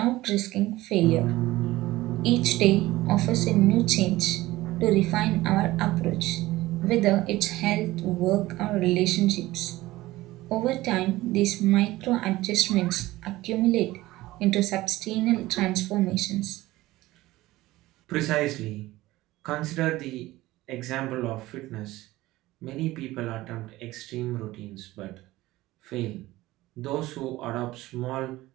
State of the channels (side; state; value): left; quieter; 17.8 dB